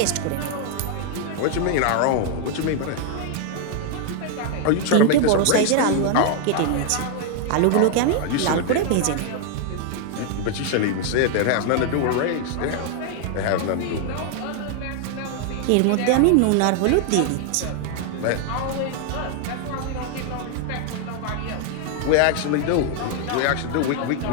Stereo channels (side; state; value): both; different; correlation 0.00